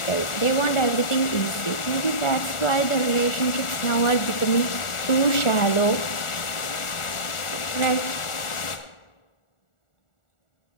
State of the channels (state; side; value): late; right; 1.4 ms